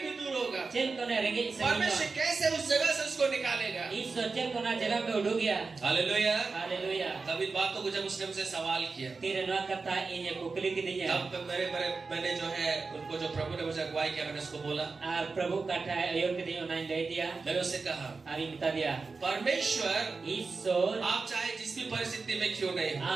दूर होगा, चेल को ने रेंगे परमेश्वर कैसे उस जगह से उसको निकालेगा। ईश्वर चेल को ना जगह पे उड़ गया। Hallelujah, hallelujah. तब इन बातों को जब उसने मुझसे सवाल किया तेरे नवा कथा इन कुकली की दी है तब मैंने जो है उनको जो प्रभु ने मुझे अगुवाई किया मैंने उसको बोला, और प्रभु कथा अयोग्य दी उन्हें दे दिया। मैंने उससे कहा आरी बता दिया परमेश्वर ईश्वर आप चाहे जिस भी परिस्थिति में क्यों नहीं हो,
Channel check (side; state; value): left; quieter; 4.3 dB